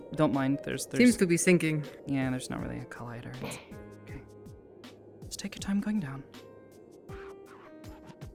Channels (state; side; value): identical; both; correlation 1.00